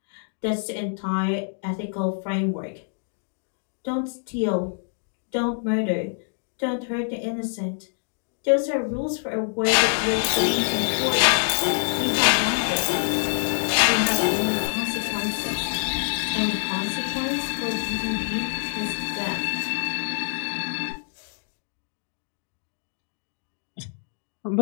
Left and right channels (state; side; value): silent; right; digital silence